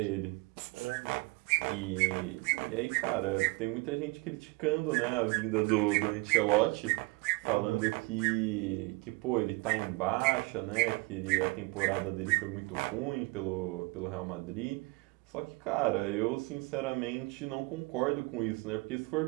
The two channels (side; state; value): left; quieter; 26.2 dB